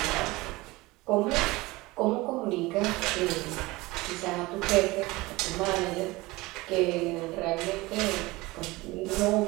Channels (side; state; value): left; quieter; 21.3 dB